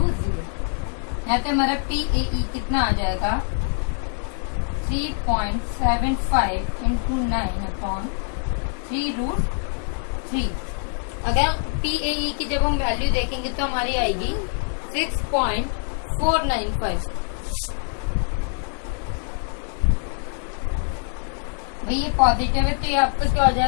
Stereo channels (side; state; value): right; silent; 57 dB below the other